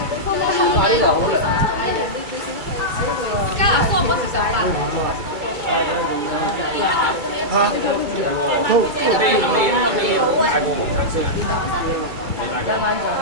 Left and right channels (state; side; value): late; left; 2.2 ms